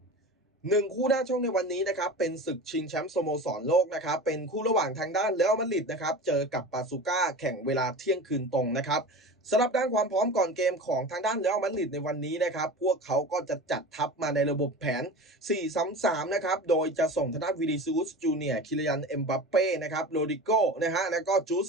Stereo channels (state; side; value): normal; both; correlation 0.33